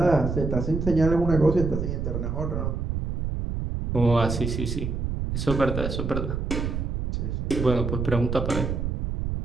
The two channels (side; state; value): right; noise; rumble, 2 dB below the sound